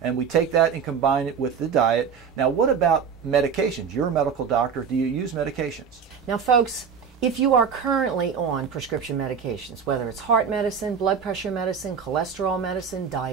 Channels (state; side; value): quieter; left; 6.7 dB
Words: and we take that and combine it with the diet. Now, what about medications? You're a medical doctor. Do you use medications? Now, folks, if you are currently on prescription medications, whether it's heart medicine, blood pressure medicine, cholesterol medicine,